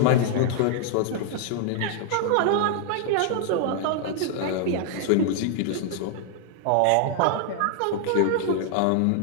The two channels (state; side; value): different; both; correlation 0.00